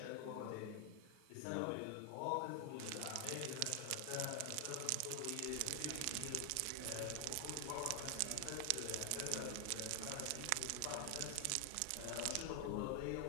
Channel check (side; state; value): both; different; correlation 0.00